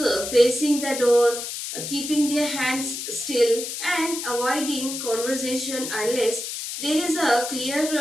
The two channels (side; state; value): left; noise; hiss, 6 dB below the sound